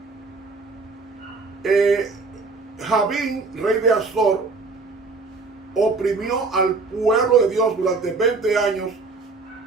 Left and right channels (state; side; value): quieter; left; 4.1 dB